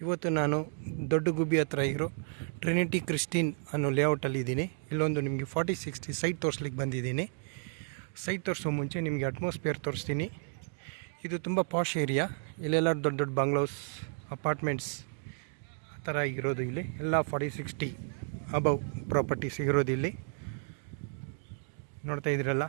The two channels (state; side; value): silent; left; 56 dB below the other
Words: ಇವತ್ತು ನಾನು ದೊಡ್ಡ ಗುಬ್ಬಿ ಹತ್ರ ಇರೋ ಟ್ರಿನಿಟಿ ಕ್ರಿಸ್ಟಿನ್ ಅನ್ನೋ ಲೇಔಟಲ್ಲಿ ಇದ್ದೀನಿ. ಇಲ್ಲೊಂದು ನಿಮಗೆ 4060 ಸೈಟ್ ತೋರಿಸ್ಲಿಕ್ಕೆ ಬಂದಿದ್ದೀನಿ. ಸೈಟ್ ತೋರಿಸೋ ಮುಂಚೆ ನಿಮಗೆ ಅಟ್ಮಾಸ್ಫಿಯರ್ ತೋರಿಸ್ತೀನಿ. ಇದು ತುಂಬ ಪಾಶ್ ಏರಿಯಾ. ಇಲ್ಲೆಲ್ಲ ದೊಡ್ಡ ದೊಡ್ಡ ಬಂಗ್ಲೋಸ್, ಅಪಾರ್ಟ್ಮೆಂಟ್ಸ್ ಆ ಥರ ಇರೋದು. ಇಲ್ಲಿ ಎಲ್ಲ 4060 ಅಬವ್ ಪ್ರಾಪರ್ಟೀಸ್ ಇರೋದು. ಇಲ್ಲಿ ನೋಡ್ತಾ ಇದ್ದೀರಲ್ಲ,